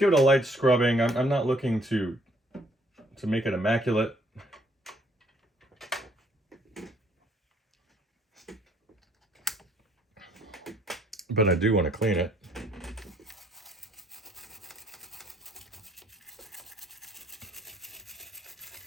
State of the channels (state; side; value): normal; both; correlation 0.65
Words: it a light scrubbing. I'm not looking to make it immaculate. But I do want to clean it.